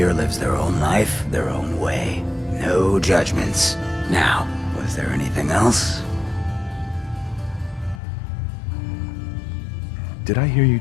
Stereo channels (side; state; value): right; drops out; at 8.0 s